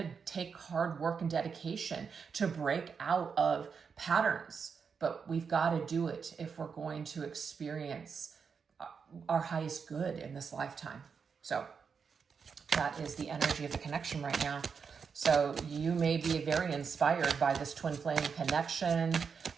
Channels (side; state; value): left; quieter; 6.0 dB